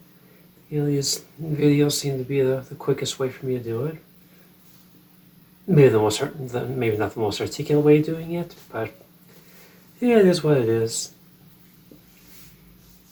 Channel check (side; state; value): both; identical; correlation 1.00